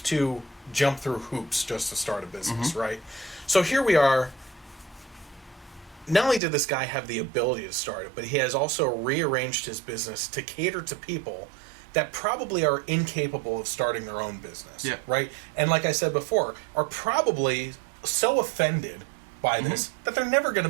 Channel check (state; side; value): drops out; left; at 6.4 s